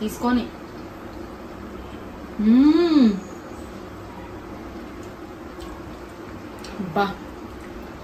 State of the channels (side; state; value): both; identical; correlation 1.00